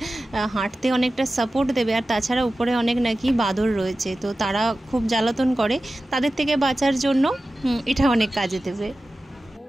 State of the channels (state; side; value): normal; both; correlation 0.95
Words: হাঁটতে অনেকটা সাপোর্ট দেবে। আর তাছাড়া উপরে অনেক নাকি বাদর রয়েছে, তো তারা খুব জ্বালাতন করে, তাদের থেকে বাঁচার জন্য এটা অনেক কাজে দেবে।